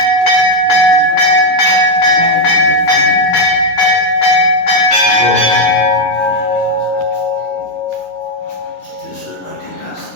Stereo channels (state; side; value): late; right; 10 ms